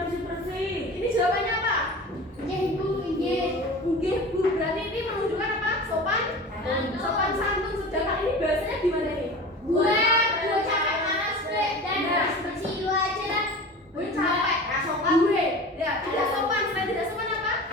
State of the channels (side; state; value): both; normal; correlation 0.35